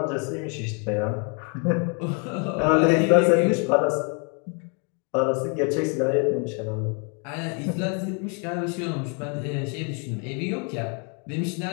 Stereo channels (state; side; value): quieter; right; 37.4 dB